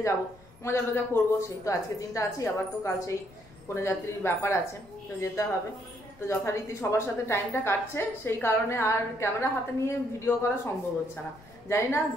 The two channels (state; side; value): noise; left; rumble, 25 dB below the sound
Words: যাব, মজা টজা করবো। সেই তো আজকে দিনটা আছি, আবার তো কাল সেই কনে যাত্রীর ব্যাপার আছে, তো যেতে হবে। তো যথারীতি সবার সাথে টাইমটা কাটছে, সেই কারণে আর ক্যামেরা হাতে নিয়ে ভিডিও করা সম্ভব হচ্ছে না। জানি না